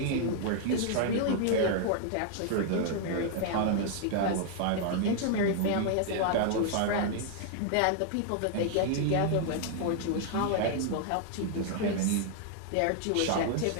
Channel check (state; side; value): different; both; correlation 0.00